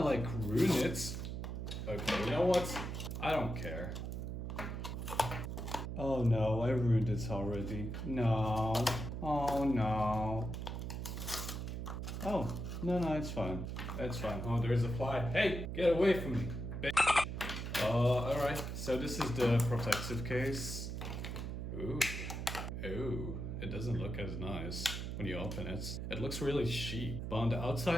like ruin it. Okay, you know what? I don't care. Oh no, I ruined it already. No. Oh no. Oh, no, it's fine. It's fine. Oh, there's a fly. Hey, get away from me, bitch. Alright. So this is the protective case. Ooh. Ooh. It doesn't look as nice when you open it. It looks really cheap. But on the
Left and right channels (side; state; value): right; noise; hum, 5 dB below the sound